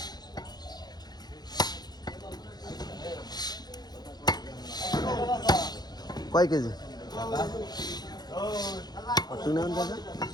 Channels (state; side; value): late; right; 0.20 ms